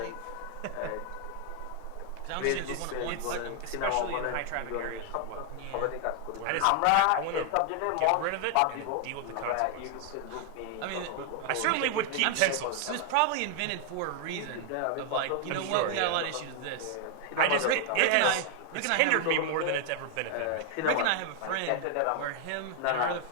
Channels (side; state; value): both; different; correlation 0.00